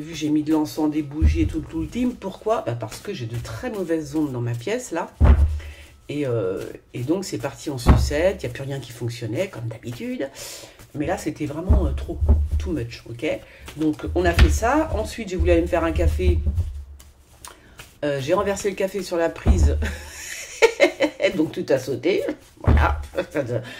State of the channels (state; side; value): identical; both; correlation 1.00